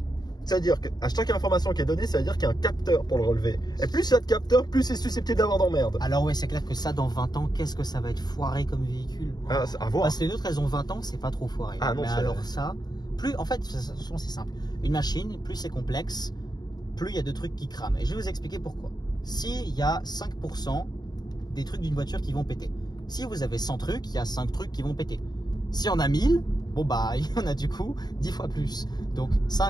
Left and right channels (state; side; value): late; right; 0.20 ms